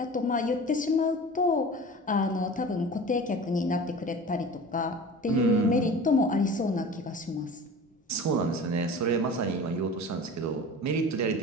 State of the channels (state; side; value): normal; both; correlation 0.37